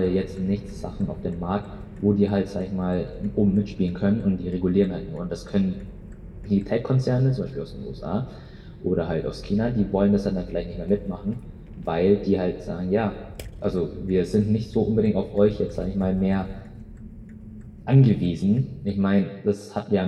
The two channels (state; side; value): identical; both; correlation 1.00